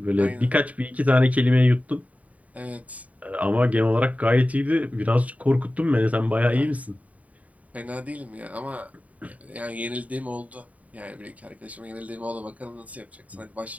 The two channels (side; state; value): left; late; 0.069 ms